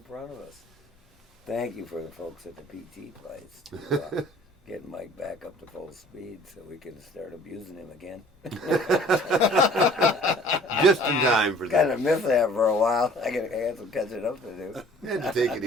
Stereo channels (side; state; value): both; normal; correlation 0.52